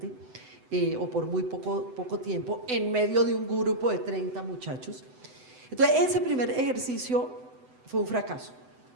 o por muy poco tiempo, en medio de un grupo de 30 muchachos. Entonces, ese primer ejercicio fue un fracaso.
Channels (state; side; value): late; left; 7.9 ms